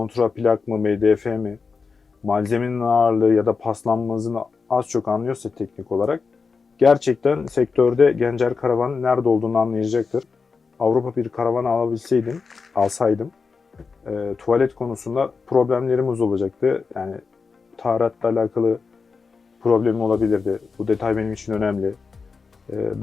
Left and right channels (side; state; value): right; quieter; 4.9 dB